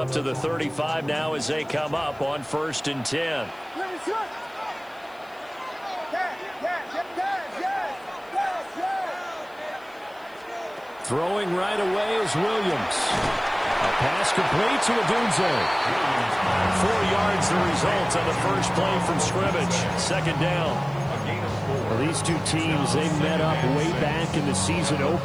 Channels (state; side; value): noise; left; hiss, 30 dB below the sound